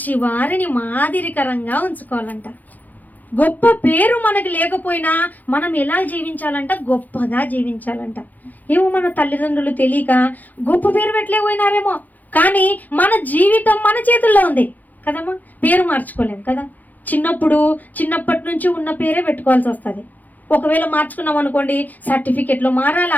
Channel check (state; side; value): late; right; 0.082 ms